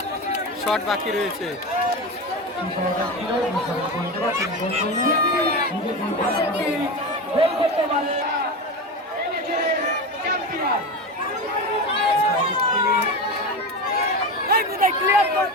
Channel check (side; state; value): both; normal; correlation 0.22